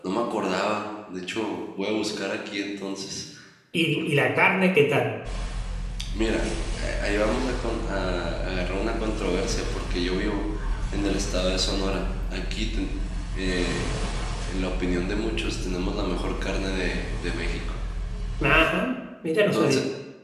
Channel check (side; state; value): both; identical; correlation 1.00